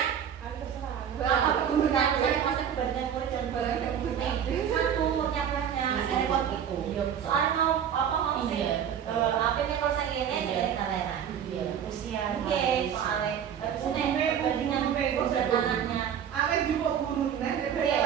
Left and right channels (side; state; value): left; quieter; 8.7 dB